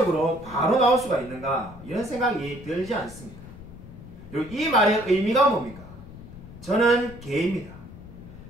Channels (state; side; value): noise; left; rumble, 16 dB below the sound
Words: 바로 나올 수가 있는가, 이런 생각이 들지 않습니다. 그리고 이 말의 의미가 뭡니까? 저는 개입니다.